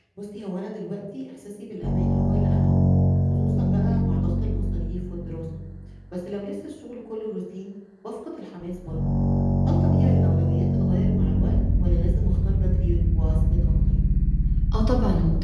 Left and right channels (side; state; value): both; identical; correlation 1.00